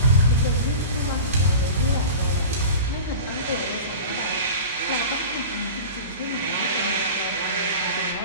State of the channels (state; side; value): inverted; both; correlation -0.33